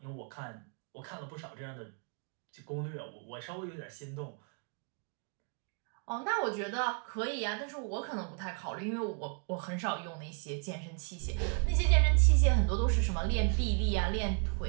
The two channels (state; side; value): quieter; left; 39.8 dB